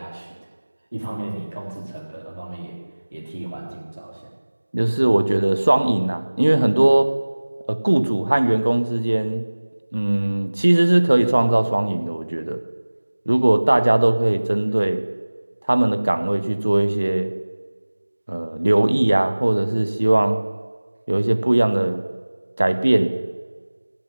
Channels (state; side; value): inverted; both; correlation -1.00